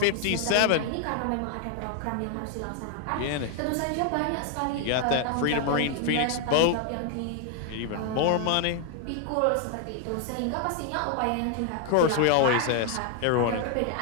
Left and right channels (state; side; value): different; both; correlation 0.01